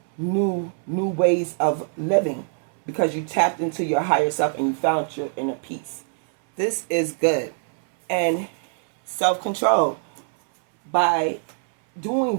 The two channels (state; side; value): silent; left; 60 dB below the other